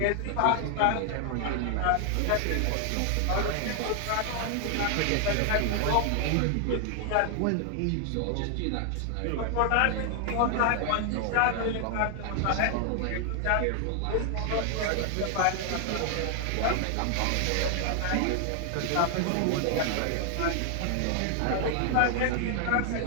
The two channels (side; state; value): both; different; correlation 0.00